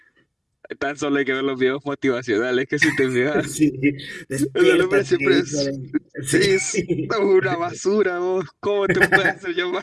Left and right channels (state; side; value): identical; both; correlation 1.00